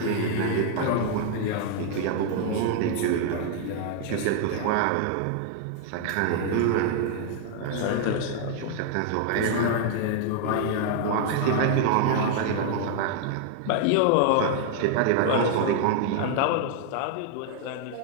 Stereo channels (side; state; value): both; different; correlation 0.00